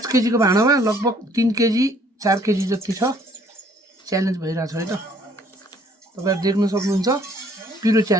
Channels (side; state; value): both; normal; correlation 0.61